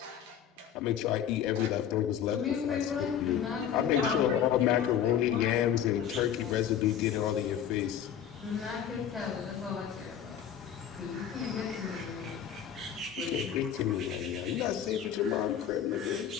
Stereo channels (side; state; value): right; quieter; 9.2 dB